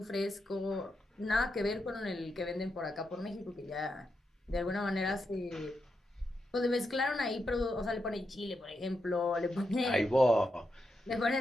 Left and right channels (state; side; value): normal; both; correlation 0.85